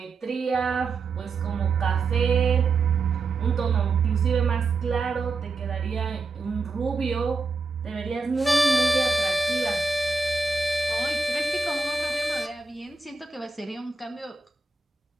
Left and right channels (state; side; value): quieter; left; 4.1 dB